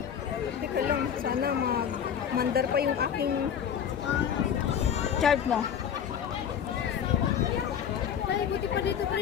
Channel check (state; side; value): quieter; right; 8.4 dB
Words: Teka lang. Sana mandar pa yung aking... Chart mo. Ay, buti pa dito,